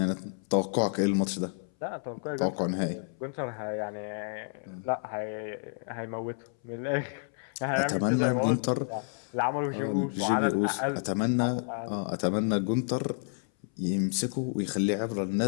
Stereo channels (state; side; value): silent; right; 58 dB below the other